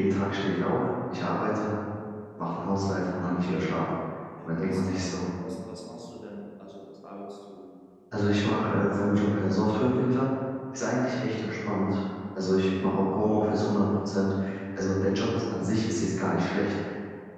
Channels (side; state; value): both; identical; correlation 1.00